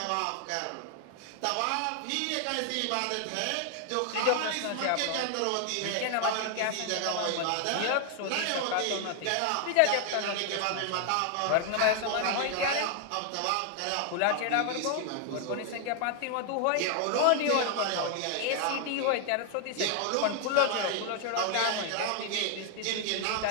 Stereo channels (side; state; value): both; different; correlation 0.00